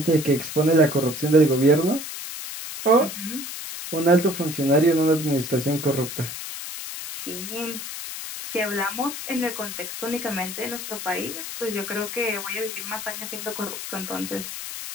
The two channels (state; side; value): noise; left; hiss, 8 dB below the sound